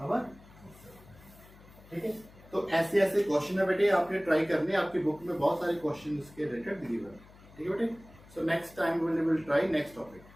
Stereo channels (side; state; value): left; noise; hum, 23 dB below the sound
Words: ठीक है। तो ऐसे ऐसे क्वेश्चन है बेटे, आपने ट्राई करने, आपकी बुक में बहुत सारे क्वेश्चन इसके रिलेटेड दिए हुए हैं, ठीक है बेटे। So next time will try next topic.